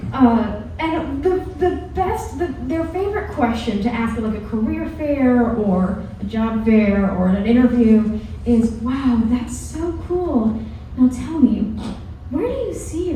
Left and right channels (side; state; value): both; identical; correlation 1.00